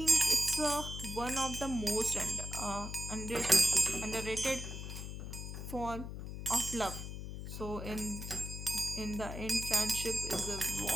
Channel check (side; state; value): left; noise; hum, 7 dB below the sound